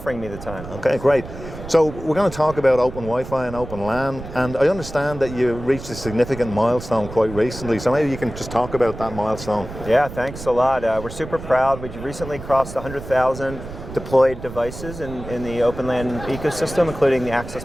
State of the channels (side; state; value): right; noise; rumble, 12 dB below the sound